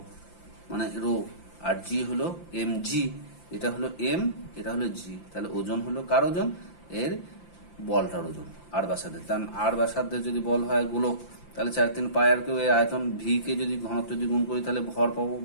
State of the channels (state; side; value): late; right; 5.8 ms